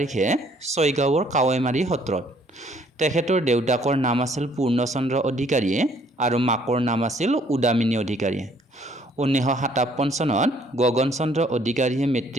ছয়গাঁৱৰ কাৱৈমাৰী সত্ৰত। তেখেতৰ দেউতাকৰ নাম আছিল পূৰ্ণচন্দ্ৰ অধিকাৰী আৰু মাকৰ নাম আছিল উদামিনী অধিকাৰী। 1957 চনত গগন চন্দ্ৰ অধিকাৰীয়ে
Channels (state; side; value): normal; both; correlation 0.62